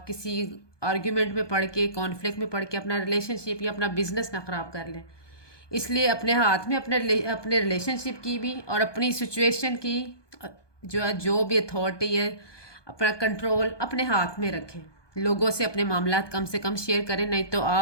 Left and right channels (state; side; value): late; right; 1.2 ms